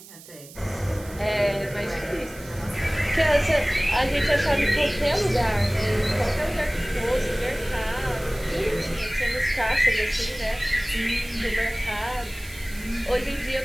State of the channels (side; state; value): right; noise; hiss, 19 dB below the sound